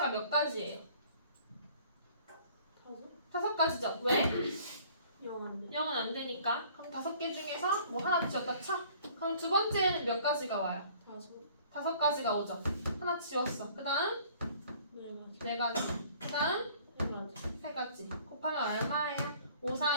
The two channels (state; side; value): inverted; both; correlation -0.54